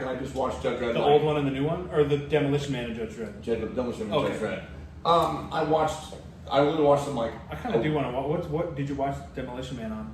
and I just watched Judge Dredd. The old one and the new one, or the Demolition Man and Judge Dredd? Demolition Man Okay. and Judge Dredd. I literally watched them like. I kind of do want to watch. What did you watch Demolition Man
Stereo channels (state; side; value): identical; both; correlation 1.00